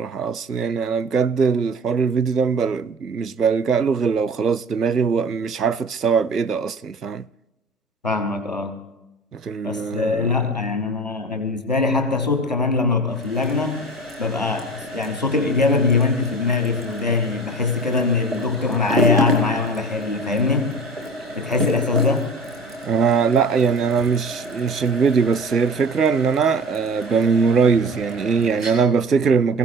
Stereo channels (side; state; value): both; normal; correlation 0.37